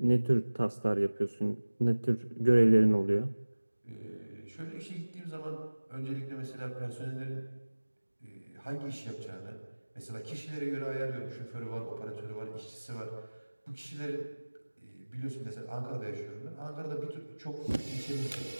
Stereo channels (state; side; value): inverted; both; correlation -1.00